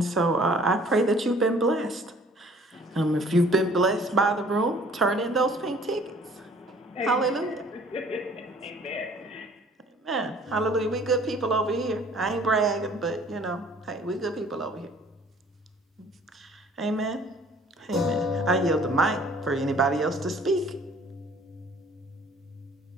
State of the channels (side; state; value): both; normal; correlation 0.54